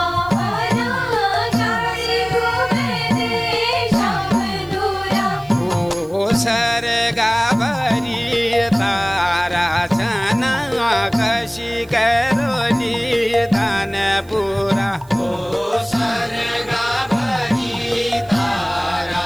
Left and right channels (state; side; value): noise; right; hiss, 27 dB below the sound